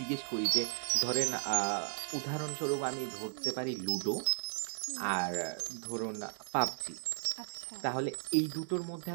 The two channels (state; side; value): silent; left; digital silence